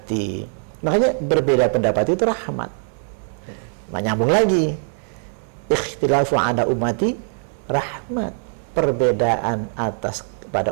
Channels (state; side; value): silent; left; 64 dB below the other